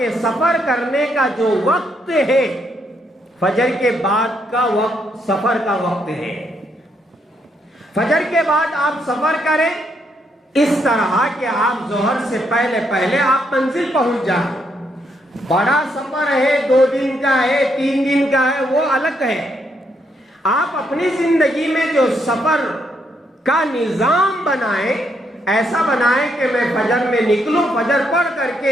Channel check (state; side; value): normal; both; correlation 0.76